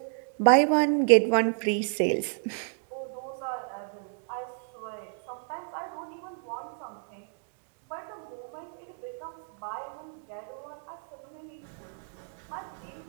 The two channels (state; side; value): silent; left; 57 dB below the other